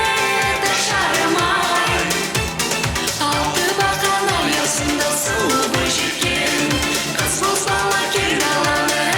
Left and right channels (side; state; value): both; identical; correlation 1.00